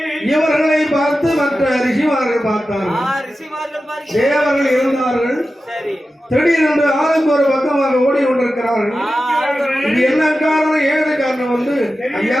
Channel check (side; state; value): both; normal; correlation 0.93